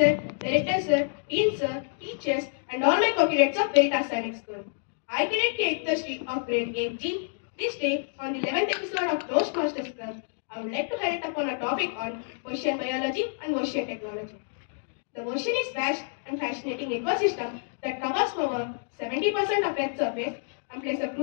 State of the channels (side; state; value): right; silent; digital silence